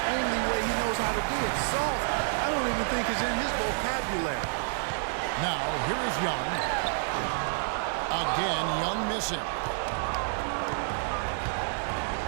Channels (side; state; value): left; silent; 59 dB below the other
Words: only way he knows how to do it. Soft, I don't even think is in his vocabulary. Now, here is Young. Again, Young missing.